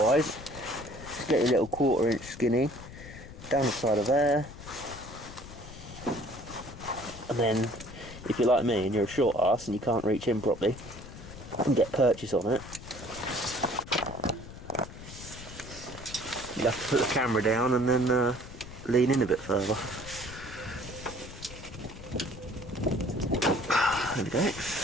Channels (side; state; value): left; noise; rumble, 14 dB below the sound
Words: just get your little 1/4 inch skinny down the side of there. And then, if you're like me and you're a short ass and you can't reach in properly, you can get purchase on it. You have to put the camera down and then lean in a bit further. There we go.